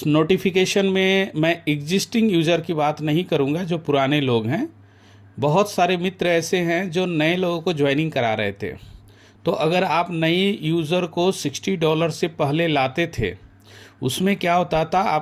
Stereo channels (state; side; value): identical; both; correlation 1.00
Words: नोटिफिकेशन में मैं एग्जिस्टिंग यूज़र की बात नहीं करूँगा, जो पुराने लोग हैं। बहुत सारे मित्र ऐसे हैं जो नए लोगों को ज्वाइनिंग करा रहे थे। तो अगर आप नई यूज़र को $60 से पहले लाते थे, उसमें क्या होता था,